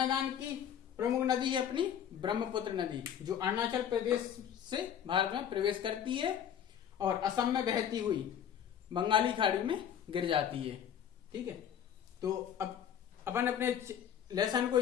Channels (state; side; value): quieter; right; 9.1 dB